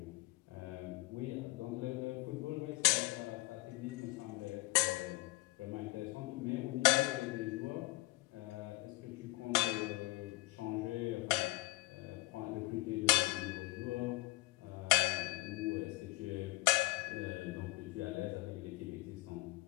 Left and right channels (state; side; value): quieter; right; 20.5 dB